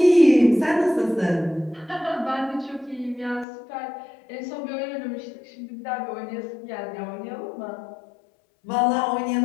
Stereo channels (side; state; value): right; drops out; at 3.5 s